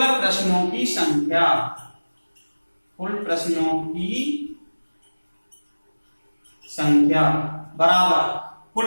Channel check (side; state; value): both; inverted; correlation -1.00